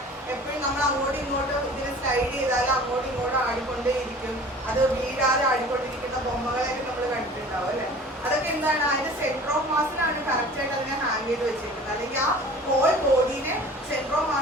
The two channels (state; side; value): normal; both; correlation 0.44